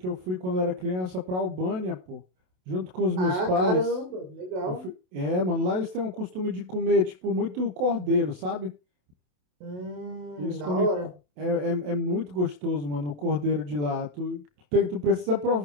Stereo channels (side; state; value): left; late; 27 ms